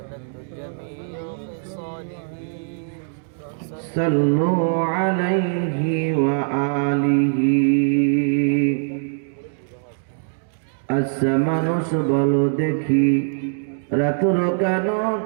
صلوا عليه وآله আচ্ছা মানুষ বলো দেখি রাতুর কেন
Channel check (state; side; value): silent; left; digital silence